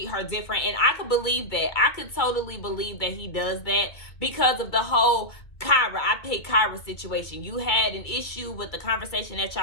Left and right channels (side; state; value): right; late; 2.3 ms